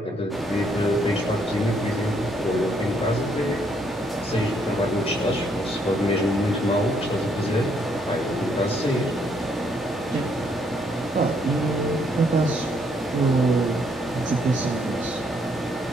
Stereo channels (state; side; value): normal; both; correlation 0.70